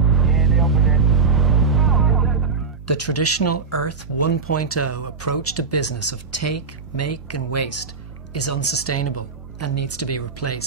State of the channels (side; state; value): left; quieter; 5.0 dB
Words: Yeah, they opened it. The traditional Earth 1.0 approach to business of take, make and waste is unsustainable and needs to be